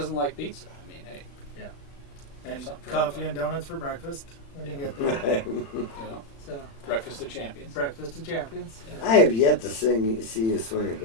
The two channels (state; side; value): late; right; 36 ms